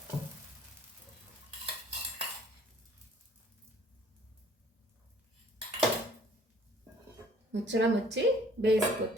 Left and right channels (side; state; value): both; normal; correlation 0.56